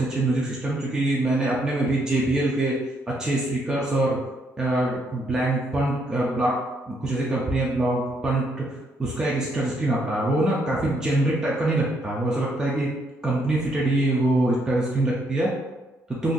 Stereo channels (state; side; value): normal; both; correlation 0.73